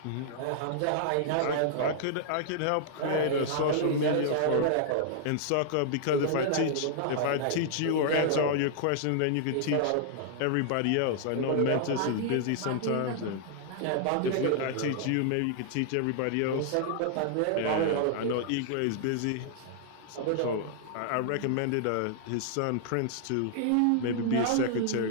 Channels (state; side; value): different; both; correlation -0.01